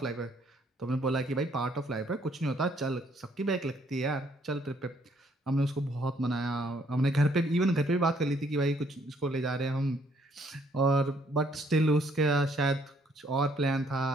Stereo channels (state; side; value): normal; both; correlation 0.66